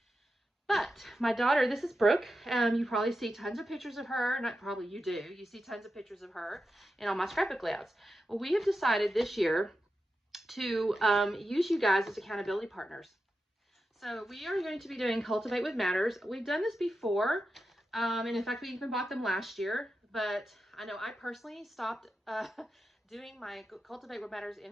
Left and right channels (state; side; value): normal; both; correlation 0.90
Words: But my daughter, this is Brooke. You probably see tons of pictures of her. Not probably, you do. You see tons of pictures of her in all my scrapbook layouts. Well, we have decided this year to use you guys as accountability partners. So we are going to be doing Cultivate with Matters. We've done this before, and in fact, we even bought them last year. But I know I personally stopped doing my Cultivate with Matters